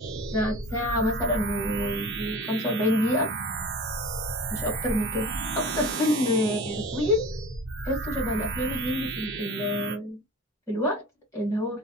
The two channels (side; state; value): both; normal; correlation 0.37